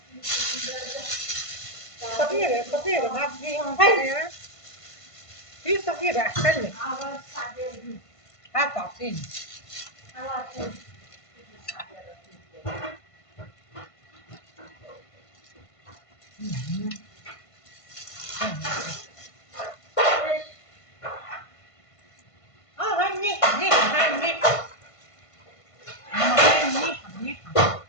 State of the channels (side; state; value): right; late; 1.5 ms